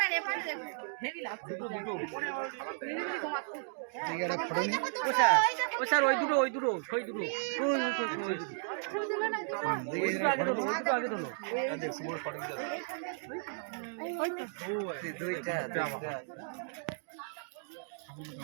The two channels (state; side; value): silent; left; digital silence